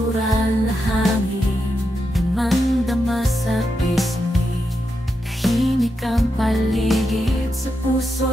na hangin, damang-dama sa pisngi. Tahimik ang paligid, sa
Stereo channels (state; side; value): normal; both; correlation 0.85